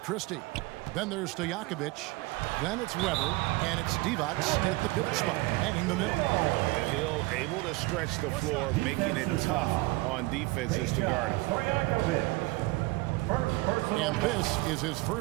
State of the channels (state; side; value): quieter; left; 22.3 dB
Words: Christie. Then there's Stojakovic. Then it's Weber. And it's Divac at the pivot spot, manning the middle. Hill able to stretch the floor, making it tough on defenses to guard him. And this is his